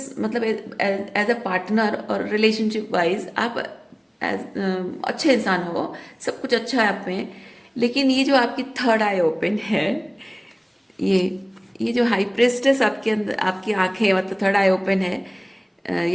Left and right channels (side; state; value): both; identical; correlation 1.00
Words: मतलब एज अ पार्टनर और रिलेशनशिप वाइज आप अच्छे इंसान हो, सब कुछ अच्छा है आप में। लेकिन ये जो आपकी थर्ड आई ओपन है, ये ये जो हाई प्रिस्टेस आपके अंदर, आपकी आंखें मतलब थर्ड आई ओपन है,